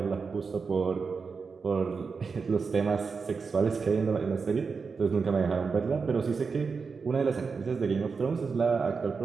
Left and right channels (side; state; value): left; quieter; 5.1 dB